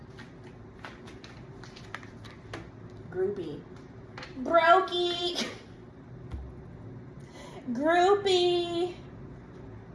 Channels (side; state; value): both; identical; correlation 1.00